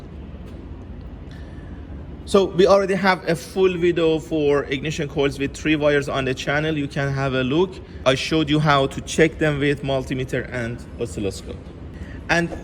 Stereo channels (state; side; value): identical; both; correlation 1.00